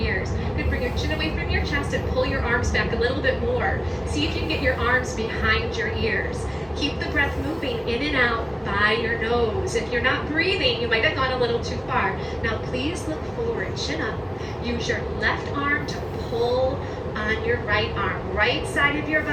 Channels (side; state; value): both; identical; correlation 1.00